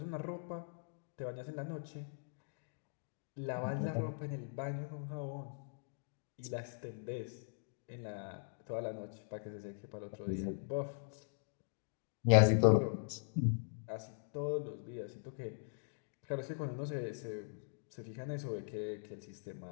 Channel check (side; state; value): right; silent; digital silence